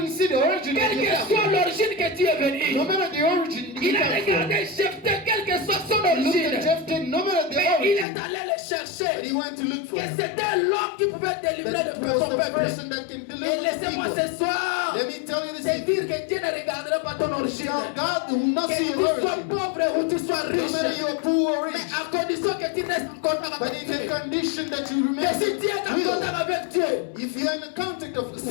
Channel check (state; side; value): drops out; right; at 8.1 s